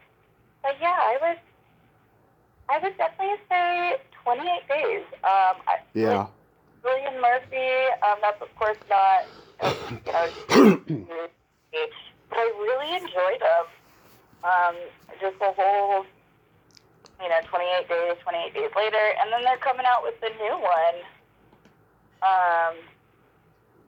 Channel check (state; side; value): identical; both; correlation 1.00